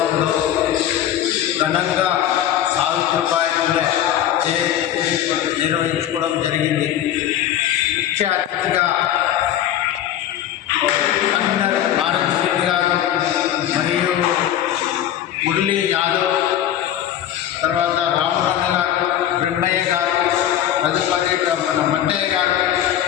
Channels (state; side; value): quieter; right; 11.2 dB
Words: ఘనంగా సావిత్రిబాయి పూలే జయంతి నిర్వహించుకోవడం జరిగింది. ముఖ్య అతిథిగా కమిషనర్ భారత్ శ్రీని గారు మరియు మురళీ యాదవ్, తర్వాత రామరన్న గారు, బ్రహ్మయ్య గారు, తదుపరి మన మట్టయ్య గారు,